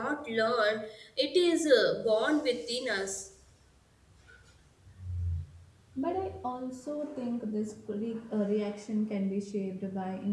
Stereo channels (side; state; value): both; identical; correlation 1.00